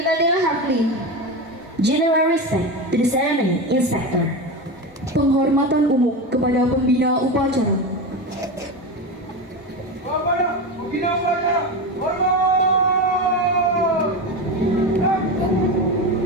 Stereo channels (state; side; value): normal; both; correlation 0.20